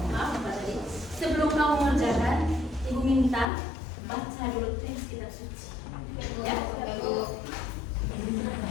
sebelum kamu mengerjakan, Ibu minta baca dulu teks kitab suci. Ya.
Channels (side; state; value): right; drops out; at 3.5 s